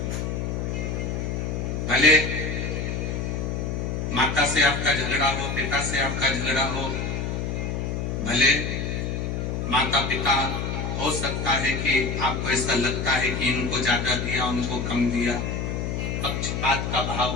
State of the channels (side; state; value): left; noise; hum, 2 dB below the sound